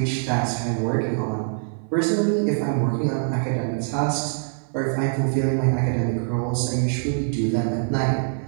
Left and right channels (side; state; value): left; silent; 59 dB below the other